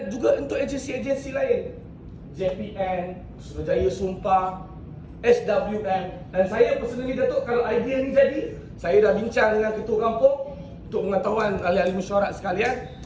juga untuk agensi-agensi lain, JPN, Suruhanjaya Sumpah, SWM. Dan saya personally, Datuk, kalau idea ni jadi, saya dah bincang dengan ketua kampung untuk pengetahuan ahli-ahli mesyuarat sekalian.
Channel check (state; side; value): identical; both; correlation 1.00